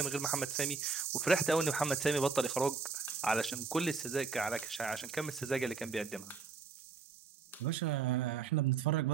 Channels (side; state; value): left; quieter; 4.9 dB